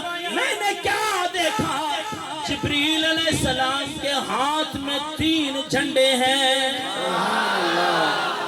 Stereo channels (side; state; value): both; identical; correlation 1.00